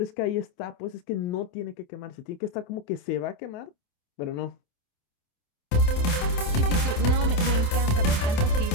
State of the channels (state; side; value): late; right; 28 ms